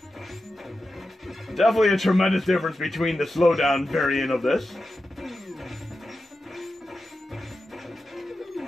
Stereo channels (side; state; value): both; normal; correlation 0.91